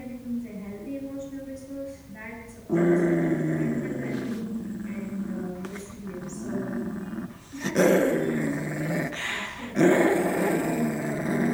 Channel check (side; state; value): both; identical; correlation 1.00